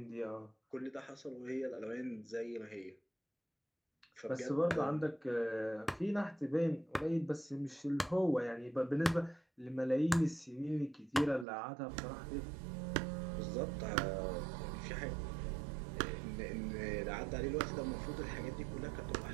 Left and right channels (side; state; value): left; drops out; at 11.5 s